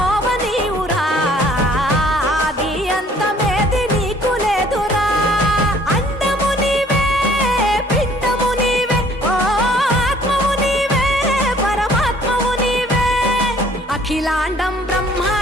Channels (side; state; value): both; normal; correlation 0.57